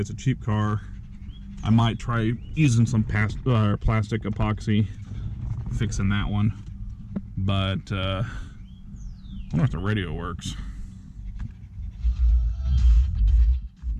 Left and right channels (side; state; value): both; identical; correlation 1.00